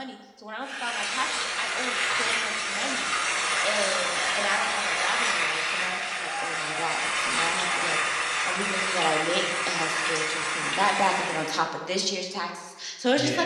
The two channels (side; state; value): both; identical; correlation 1.00